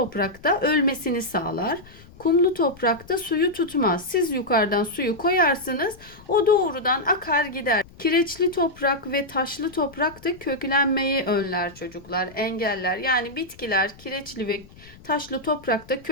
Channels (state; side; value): noise; left; rumble, 22 dB below the sound